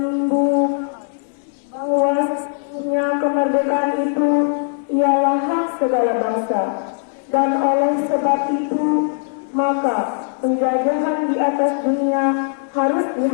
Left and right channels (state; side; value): silent; right; digital silence